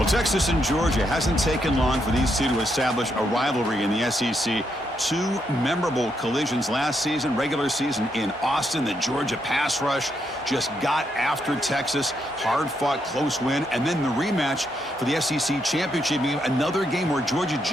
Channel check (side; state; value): both; normal; correlation 0.79